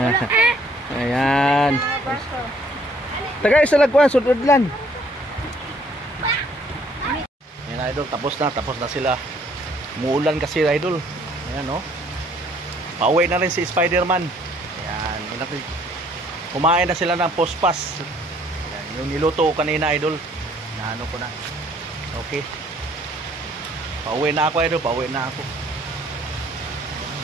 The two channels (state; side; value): normal; both; correlation 0.62